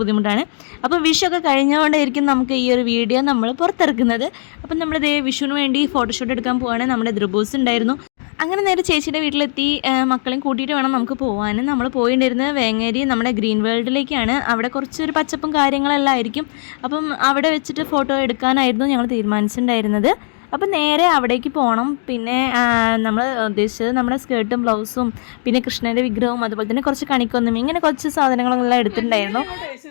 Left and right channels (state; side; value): silent; right; 67 dB below the other